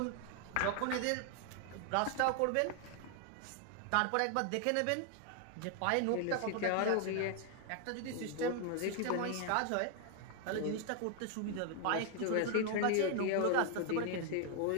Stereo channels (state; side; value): different; both; correlation 0.00